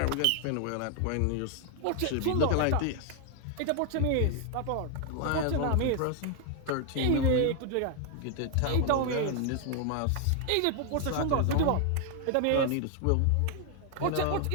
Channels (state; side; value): different; both; correlation 0.00